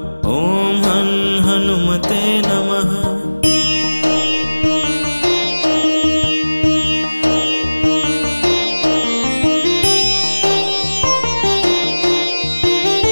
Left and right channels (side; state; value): both; inverted; correlation -1.00